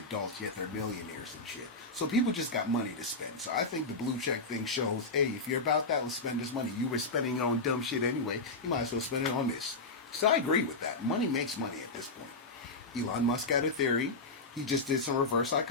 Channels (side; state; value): right; quieter; 3.3 dB